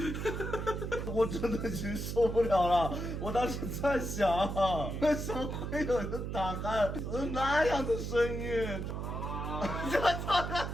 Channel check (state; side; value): noise; right; hum, 4 dB below the sound